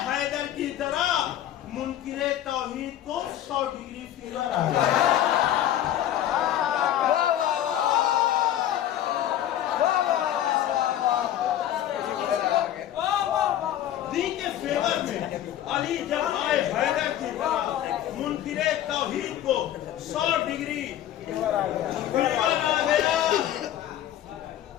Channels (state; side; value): quieter; right; 11.8 dB